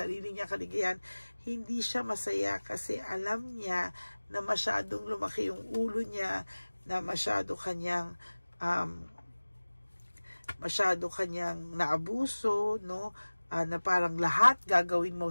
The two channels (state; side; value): inverted; both; correlation -1.00